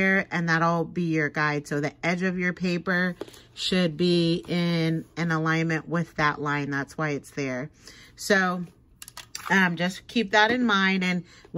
and that'll be your guide. So the edge of your paper should be in an alignment with that line. That's why it's there. So just keep that in mind, and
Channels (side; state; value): both; identical; correlation 1.00